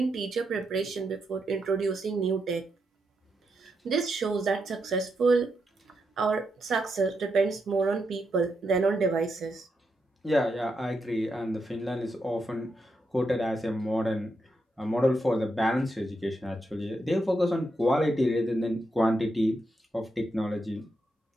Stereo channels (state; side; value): normal; both; correlation 0.83